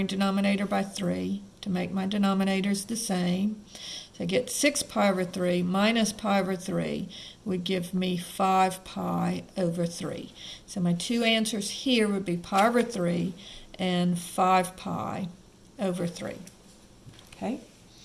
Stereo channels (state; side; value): identical; both; correlation 1.00